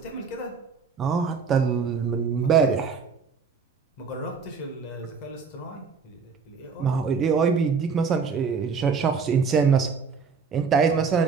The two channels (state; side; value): quieter; left; 5.5 dB